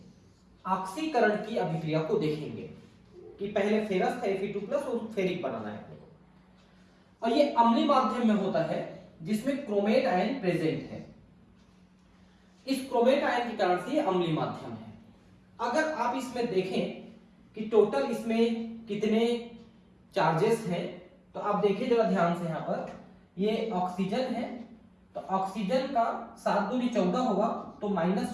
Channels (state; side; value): identical; both; correlation 1.00